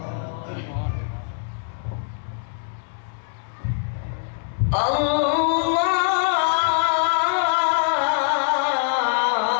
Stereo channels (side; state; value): right; silent; 63 dB below the other